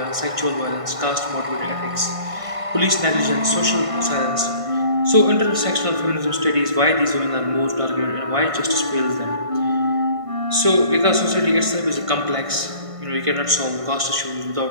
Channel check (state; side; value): late; left; 1.5 ms